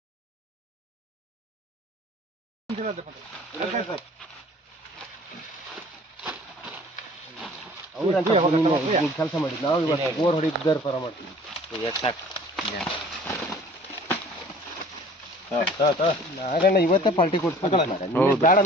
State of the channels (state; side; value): normal; both; correlation 0.50